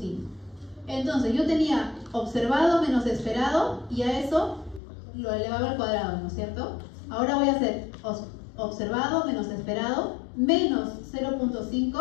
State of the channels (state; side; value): drops out; right; at 4.8 s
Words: Entonces yo tenía observado menos esperado y a eso lo elevaba al cuadrado, ¿no es cierto? Ahora voy a hacer observado menos esperado menos